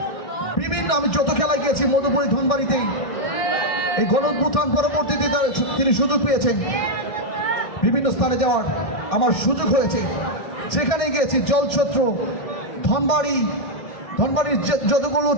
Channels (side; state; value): right; late; 1.6 ms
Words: বিভিন্ন, আমি যত খেলায় গিয়েছি মধুপুরী ধনবাড়িতে, এই গণঅভ্যুত্থান পরবর্তীতে তিনি সুযোগ পেয়েছেন বিভিন্ন স্থানে যাওয়ার, আমার সুযোগ হয়েছে, সেখানে গিয়েছি। জলছত্র, ধনবাড়ির যতগুলো